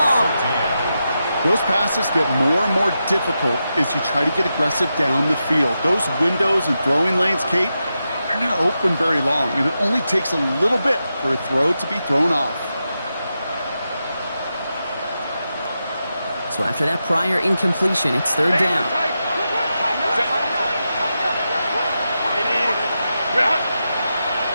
Those passes get more and more difficult as you try to get aggressive down the field. Those windows and throwing lanes, Kate, they're not open very long, and it only takes a little bit for a throw to be thrown off. So after that prior incompletion, it's 3rd down.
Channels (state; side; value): inverted; both; correlation -0.88